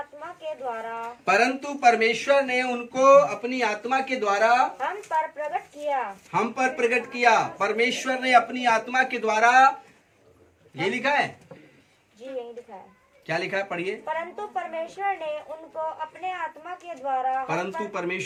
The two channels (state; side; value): identical; both; correlation 1.00